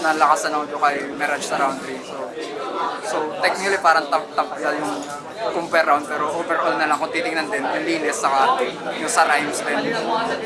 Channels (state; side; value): identical; both; correlation 1.00